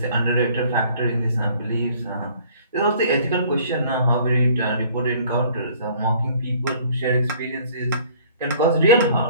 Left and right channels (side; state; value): both; inverted; correlation -0.55